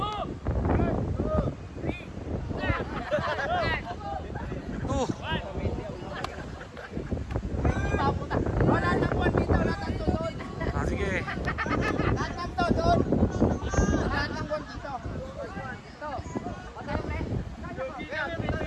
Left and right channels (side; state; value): both; identical; correlation 1.00